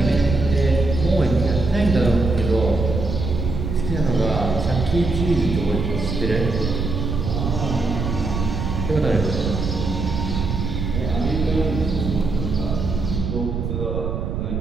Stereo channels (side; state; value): right; noise; rumble, 3 dB below the sound